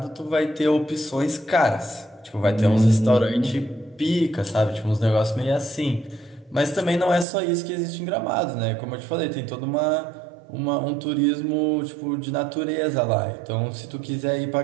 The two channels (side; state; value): left; drops out; at 7.2 s